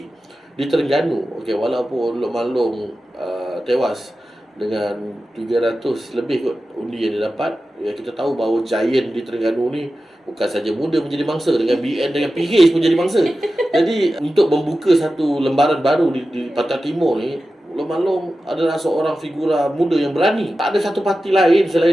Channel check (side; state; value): both; normal; correlation 0.93